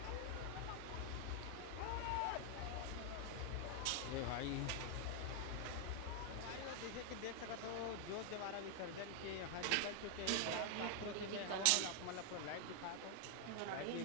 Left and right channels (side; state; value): both; different; correlation 0.00